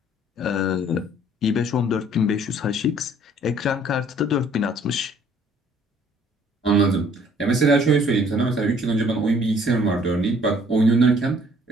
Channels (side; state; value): both; normal; correlation 0.59